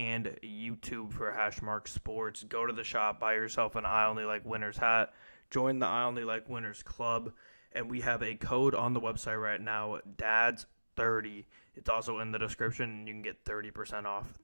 YouTube for Hashmark Sports. Go to the shop, buy yourself an I Only Like Winners hat, join the I Only Like Winners Club, and we have a code on the website right now, DADS30. It's also in the description, and you can get 30% off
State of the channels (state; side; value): inverted; both; correlation -1.00